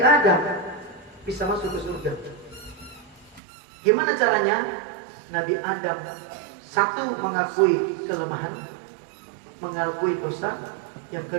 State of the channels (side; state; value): left; drops out; at 3.4 s